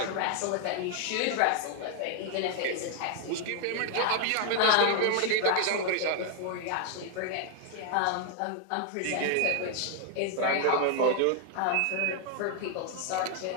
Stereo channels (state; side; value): different; both; correlation 0.00